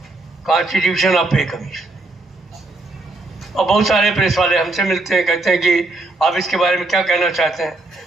कॉन्स्टिट्यूशन ऑफ पे कमीशन। और बहुत सारे प्रेस वाले हमसे मिलते हैं, कहते हैं कि आप इसके बारे में क्या कहना चाहते हैं।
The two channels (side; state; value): left; quieter; 3.0 dB